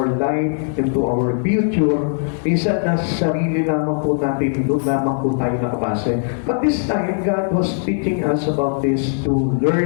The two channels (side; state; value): right; silent; digital silence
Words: life into our future. Minsan nasa sarili lamang po natin, doon lamang po tayo nakabase. But this time, God was teaching us about this to